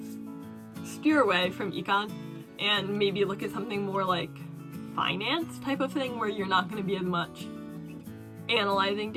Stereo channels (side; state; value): both; identical; correlation 1.00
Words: steer away from econ and maybe look at something more like finance type of thing, where you're not going to be as much analyzing